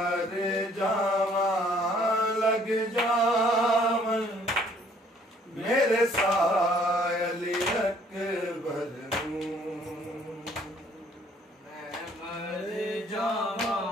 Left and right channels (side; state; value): both; normal; correlation 0.60